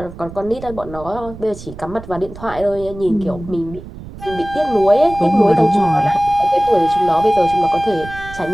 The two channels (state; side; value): noise; right; rumble, 14 dB below the sound